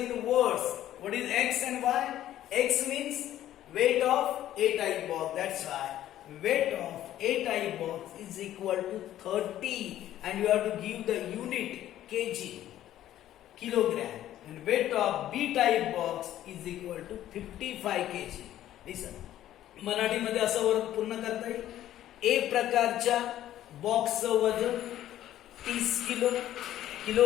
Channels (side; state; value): right; quieter; 12.7 dB